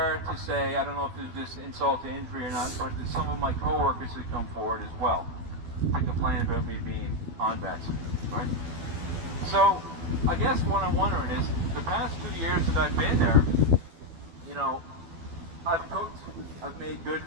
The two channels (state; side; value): late; left; 12 ms